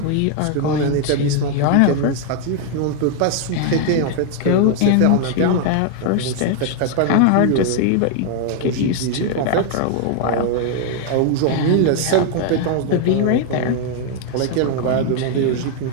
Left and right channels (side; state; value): both; different; correlation 0.00